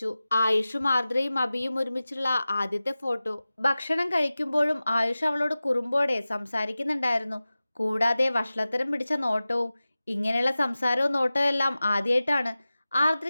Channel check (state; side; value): inverted; both; correlation -0.96